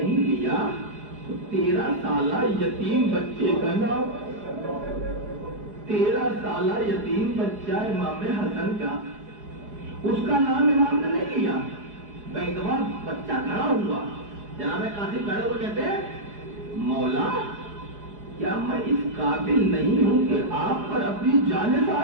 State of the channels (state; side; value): late; left; 4.8 ms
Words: لیا تو 13 سالہ یتیم بچے کا نام، 13 سالہ یتیم بچہ امام حسن کا، اس کا نام امام نے نہیں لیا۔ ایک دفعہ بچہ کھڑا ہوا، جناب قاسم کھڑے ہوئے کہتے ہیں مولا کیا میں اس قابل نہیں ہوں کہ آپ پر اپنی جان